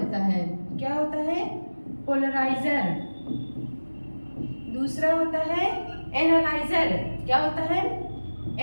है। क्या होता है? पोलराइजर। दूसरा होता है एनालाइजर। क्या होता है?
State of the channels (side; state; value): both; inverted; correlation -1.00